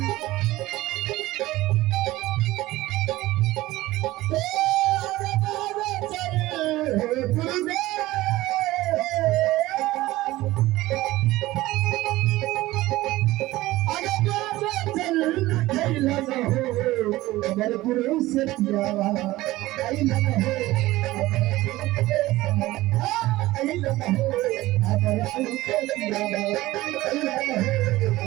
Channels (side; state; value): left; quieter; 17.7 dB